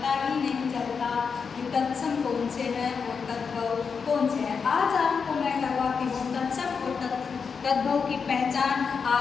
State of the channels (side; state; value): right; quieter; 5.8 dB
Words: ही नहीं चलता कि तत्सम कौन से हैं और तद्भव कौन से हैं। आज आपको मैं करवाती हूँ तत्सम और तद्भव की पहचान।